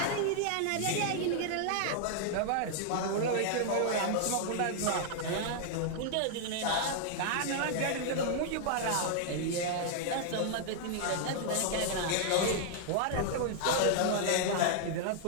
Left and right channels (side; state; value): both; different; correlation -0.01